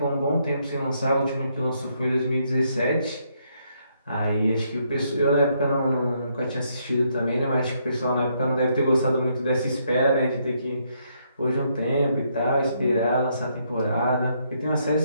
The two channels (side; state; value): both; inverted; correlation -0.74